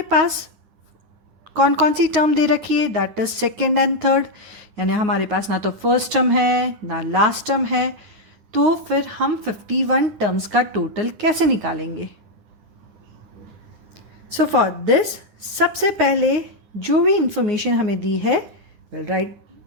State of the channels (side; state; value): left; late; 9.5 ms